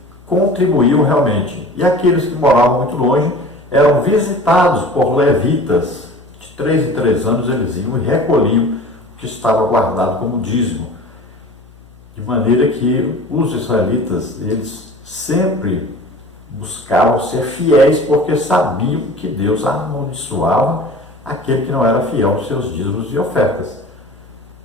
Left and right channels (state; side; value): noise; left; hum, 24 dB below the sound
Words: contribuíam realmente. E aqueles que moravam muito longe eram visitados por levitas. De 3 em 3 anos eles iam e recolhiam o que estava guardado como dízimo. De maneira que os israelitas, eles sempre buscavam ser fiéis porque sabiam que Deus amaldiçoava aquele que não era fiel aos seus dízimos e ofertas.